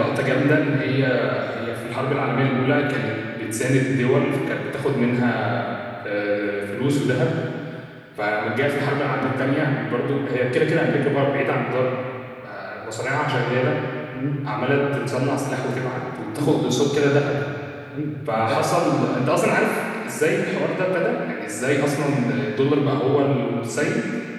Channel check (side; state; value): both; identical; correlation 1.00